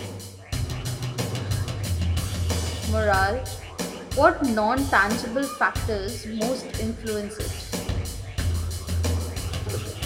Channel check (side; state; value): both; identical; correlation 1.00